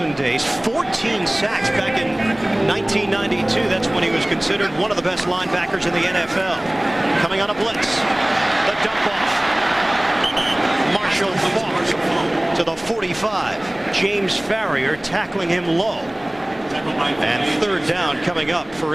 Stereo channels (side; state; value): left; noise; rumble, 26 dB below the sound